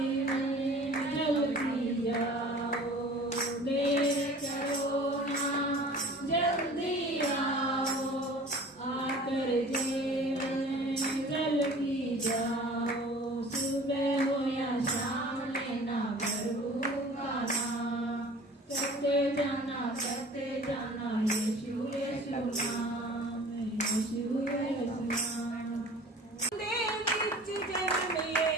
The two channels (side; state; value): both; normal; correlation 0.45